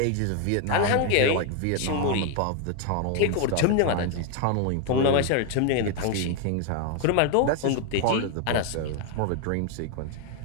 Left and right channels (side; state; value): both; different; correlation 0.01